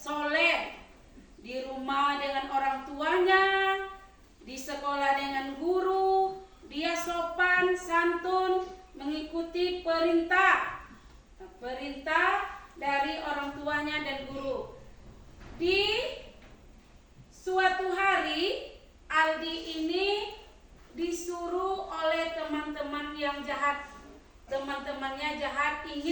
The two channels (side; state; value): both; identical; correlation 1.00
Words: di rumah dengan orang tuanya, di sekolah dengan guru, dia sopan, santun, mengikuti perintah dari orang tuanya dan guru. Di suatu hari Aldi ini disuruh oleh teman-teman yang jahat. Teman-temannya jahat